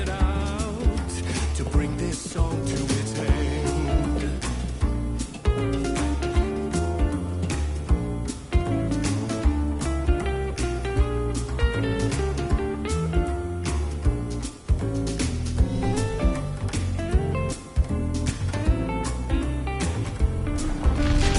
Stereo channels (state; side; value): identical; both; correlation 1.00